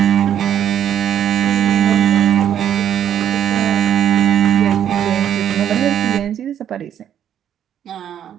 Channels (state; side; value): quieter; left; 9.9 dB